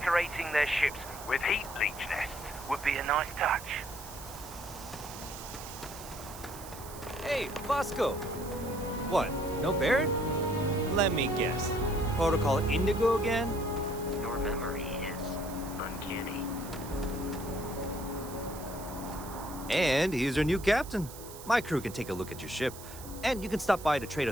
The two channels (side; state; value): right; noise; hiss, 15 dB below the sound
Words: their ships with heat leech nests would be a nice touch. Hey, Bosco! What, no Barrett? Let me guess. Protocol Indigo again? Your memory is uncanny. And he's your new captain. My crew can take a look at your ship, and you can stop by the Trade